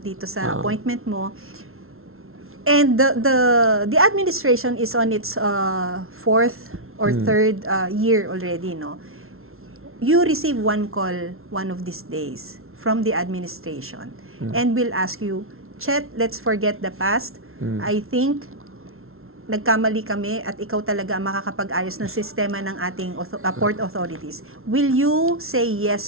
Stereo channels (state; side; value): late; left; 0.62 ms